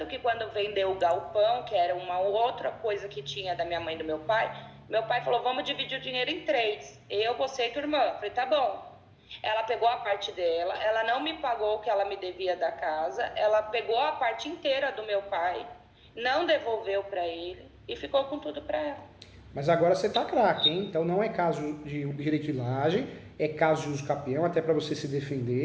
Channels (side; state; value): both; identical; correlation 1.00